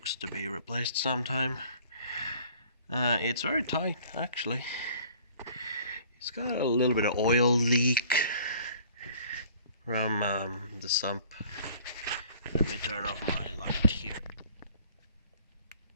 to be replaced sometime. It's very tight, actually. It's got a little bit of oil leak from the sump. Let me turn off my light here.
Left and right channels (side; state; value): both; inverted; correlation -0.53